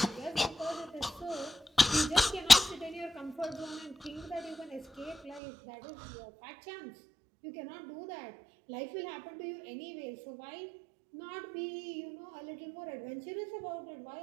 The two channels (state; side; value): drops out; left; at 5.4 s